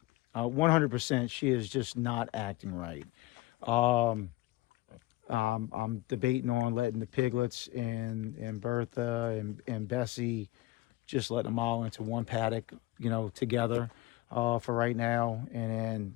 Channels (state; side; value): quieter; right; 18.4 dB